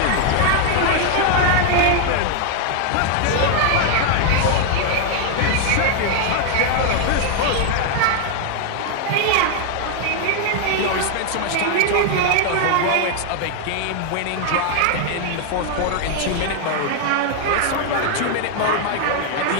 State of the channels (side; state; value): both; different; correlation 0.00